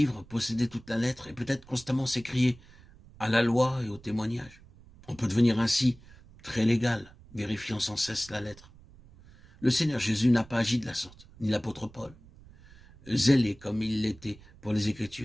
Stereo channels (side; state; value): right; noise; rumble, 23 dB below the sound